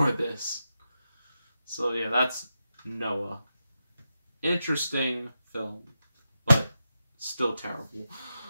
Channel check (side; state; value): both; inverted; correlation -0.88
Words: this. So yeah, that's Noah. Interesting film, but still terrible.